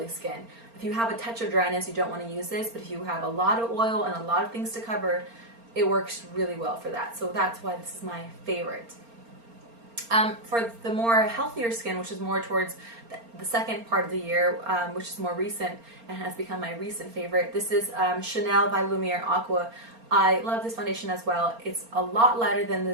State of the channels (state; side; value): late; left; 4.3 ms